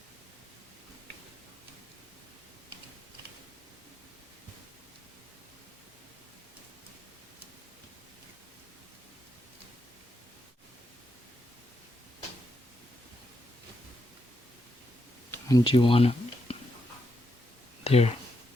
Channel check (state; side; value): normal; both; correlation 0.82